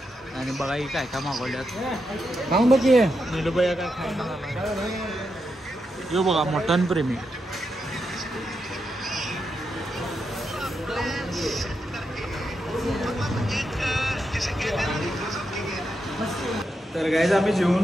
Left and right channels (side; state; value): both; normal; correlation 0.85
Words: आणि बघा ही काय काय मागवल्यात. खाऊन बघी नीलूबाई काय खायला. यो बघा मटन प्रेमी. तर गाईज आम्ही